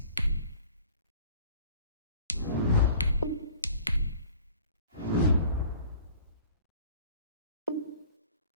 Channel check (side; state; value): both; inverted; correlation -0.50